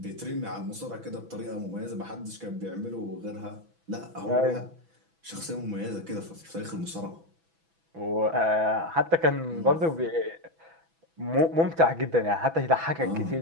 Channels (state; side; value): late; left; 6.1 ms